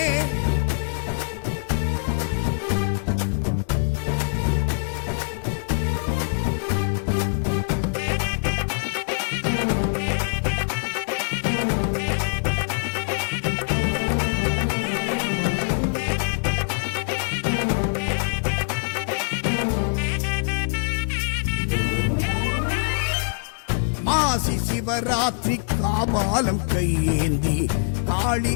மாசி சிவராத்திரி காபாலம் கையேந்தி காளி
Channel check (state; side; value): silent; right; digital silence